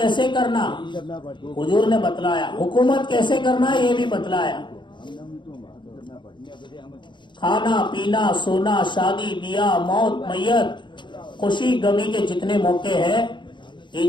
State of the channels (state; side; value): late; right; 0.23 ms